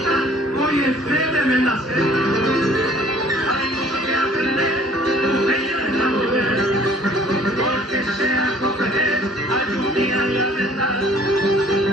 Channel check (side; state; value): both; normal; correlation 0.55